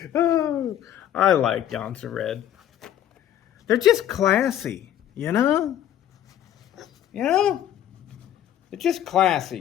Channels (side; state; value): right; quieter; 11.1 dB